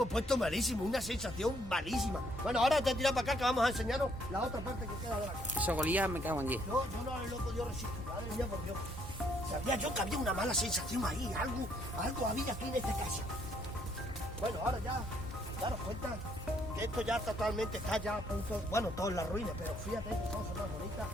puesto malísimo, una sensación malísima. Bueno, ahora te tiras para acá que vamos a enseñaros la otra parte que queda de la casa. Eso golía, me cago en 10. Yo no lo he podido resistir, madre mía, por Dios. Sabía yo que había una mala sensación ahí, algo había aquí en esta casa. Bueno, ahora ya daros cuenta que esto ya totalmente está ya a punto, bueno, todo en la ruina, pero fíjate que cosas más bonitas.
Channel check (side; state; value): both; normal; correlation 0.68